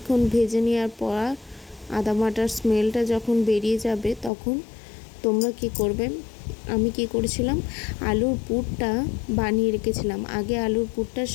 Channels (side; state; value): right; drops out; at 4.3 s